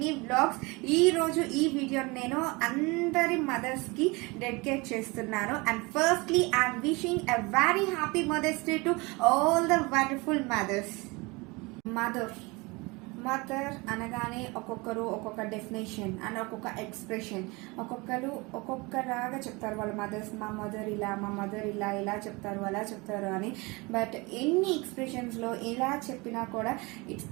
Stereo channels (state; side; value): quieter; left; 25.6 dB